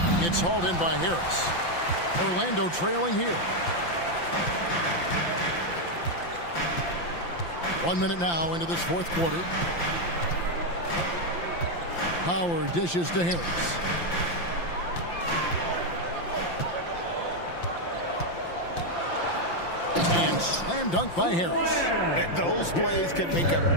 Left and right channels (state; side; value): late; right; 5.8 ms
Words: It's hauled in by Harris. Orlando trailing here. 1 minute now into this fourth quarter. Howard dishes to Harris. And slam dunk by Harris. And those plays can make